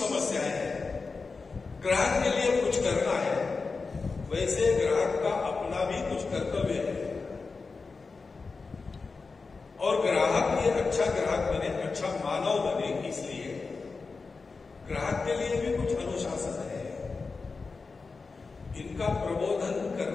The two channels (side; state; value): right; quieter; 4.3 dB